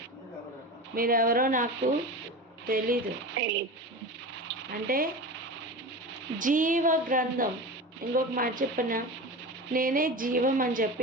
మీరెవరో నాకు తెలీదు. అంటే జీవ గ్రంథం, ఇంకొక మాట చెప్పిన, నేనే జీవం అని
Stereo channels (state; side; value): normal; both; correlation 0.29